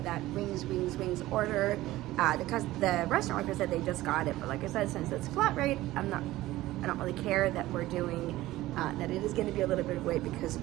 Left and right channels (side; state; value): left; quieter; 16.7 dB